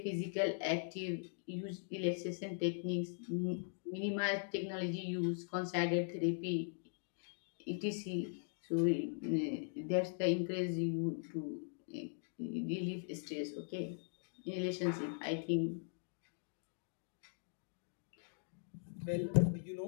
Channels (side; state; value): right; silent; digital silence